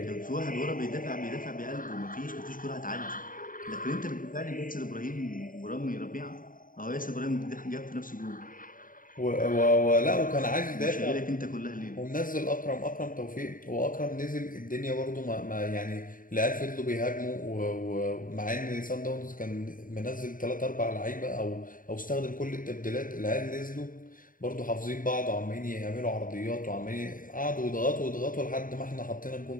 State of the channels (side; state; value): right; late; 0.40 ms